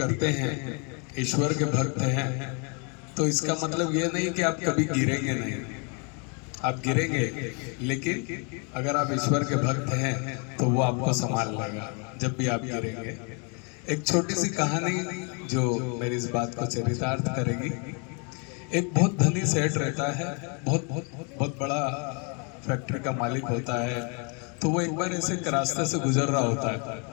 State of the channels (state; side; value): quieter; right; 36.2 dB